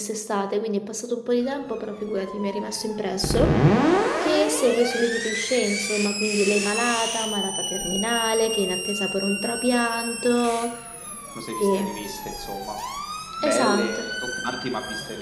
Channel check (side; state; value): both; identical; correlation 1.00